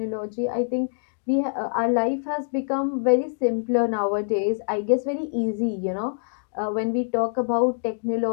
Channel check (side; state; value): right; silent; digital silence